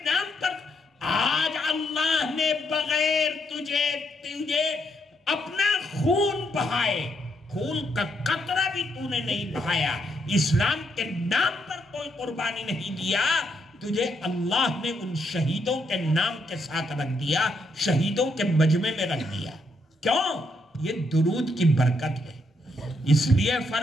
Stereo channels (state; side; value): normal; both; correlation 0.77